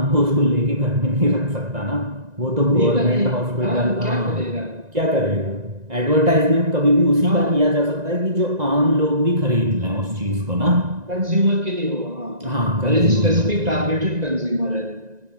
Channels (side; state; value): left; late; 1.9 ms